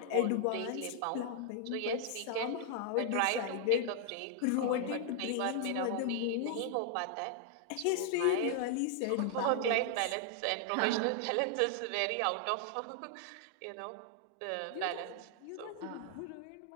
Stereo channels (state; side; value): different; both; correlation 0.00